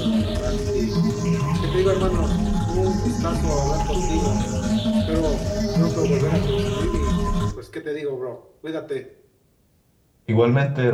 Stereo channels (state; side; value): identical; both; correlation 1.00